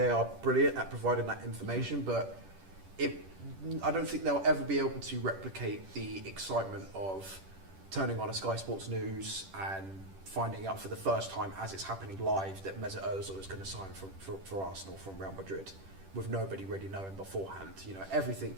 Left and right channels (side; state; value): left; late; 10 ms